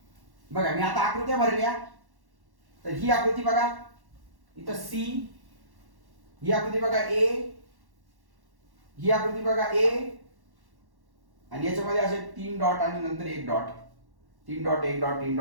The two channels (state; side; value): late; left; 1.1 ms